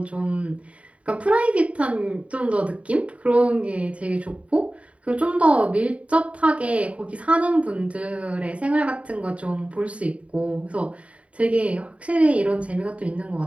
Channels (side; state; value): left; late; 0.064 ms